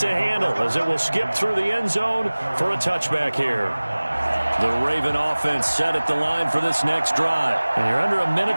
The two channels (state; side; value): inverted; both; correlation -1.00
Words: handle as it will skip through the end zone for a touchback here. The Raven offense set at the line for this next drive. And you're under a minute